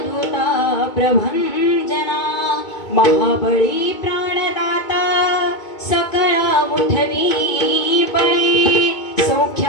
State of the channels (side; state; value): right; late; 2.2 ms